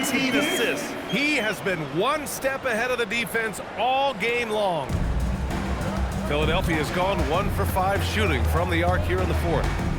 assists. He has been one step ahead of the defense all game long. Philadelphia has gone 1 for 5 shooting from the arc here in the 4th.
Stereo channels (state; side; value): identical; both; correlation 1.00